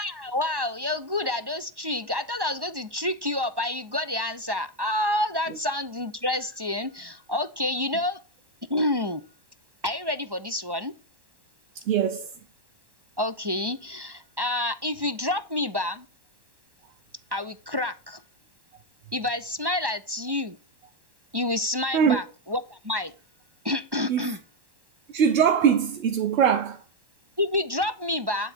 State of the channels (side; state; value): left; late; 1.1 ms